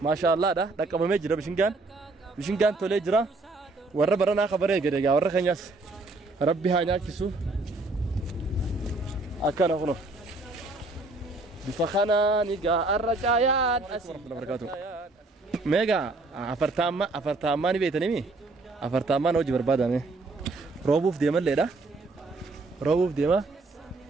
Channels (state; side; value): quieter; left; 3.2 dB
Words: ما شاء الله ده دكمه جرا بشنغان تولي جرا ور برنا خبره غدغا ور خنياس ربي هانيا كيسو اكن هونو بفخنا نيغا الرجايات اسلام بركاته ميجا أفرتاما نبيتني مي أفرتاما نوجي بربادا مي روبوف ديما ليدا روبوف ديما